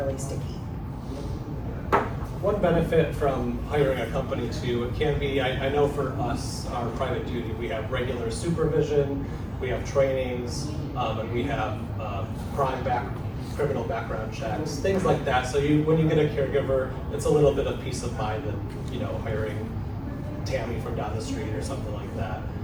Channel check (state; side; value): identical; both; correlation 1.00